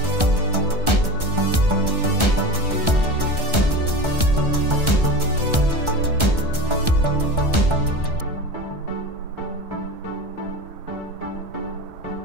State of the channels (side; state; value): left; late; 1.3 ms